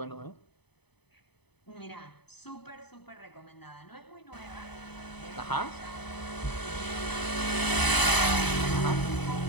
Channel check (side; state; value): right; late; 0.98 ms